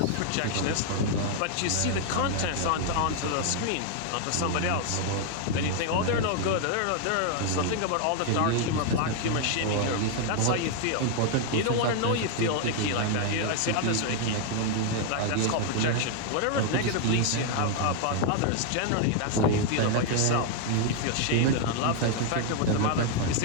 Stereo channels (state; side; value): different; both; correlation 0.00